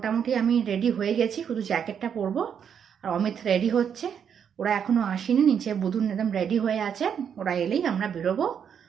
আমি রেডি হয়ে গেছি, শুধু জ্যাকেটটা পরবো। আর অমিত রেডি হচ্ছে, ওরা এখনো আসেনি, নিচে বুদুন একদম রেডি হয়ে আছে। ওরা এলেই আমরা বেরোবো।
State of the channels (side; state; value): left; quieter; 7.9 dB